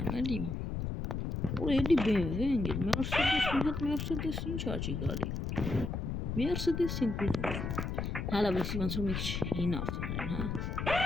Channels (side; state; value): left; noise; rumble, 3 dB below the sound